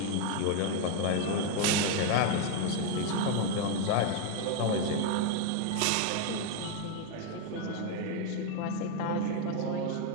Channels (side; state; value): both; different; correlation 0.01